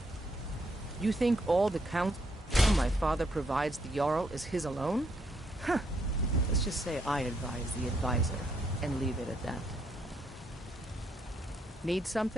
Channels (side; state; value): both; normal; correlation 0.74